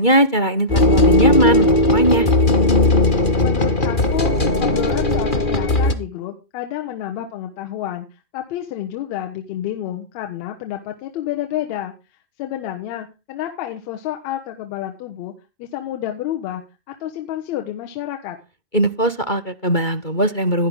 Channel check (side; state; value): right; late; 2.4 ms